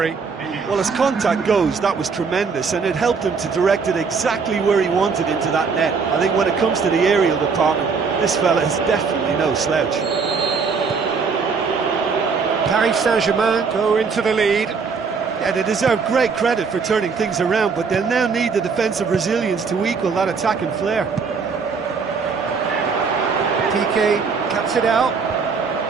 Well, as contact goes, that was tremendous, and it helped him to direct it exactly where he wanted into that net. I think when it comes to the aerial department, this fella is definitely no slouch. Paris Saint-Germain go into the lead. Yeah, they deserve great credit for turning things around, but they'll now need the defensive resilience to equal that attacking flair. PK cuts it out.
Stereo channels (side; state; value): left; quieter; 5.3 dB